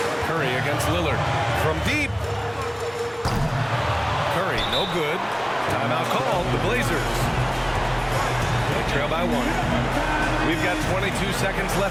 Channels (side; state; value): both; identical; correlation 1.00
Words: Curry against Lillard. From deep. Curry, no good. Timeout called, the Blazers. They trail by 1. We've got 22 seconds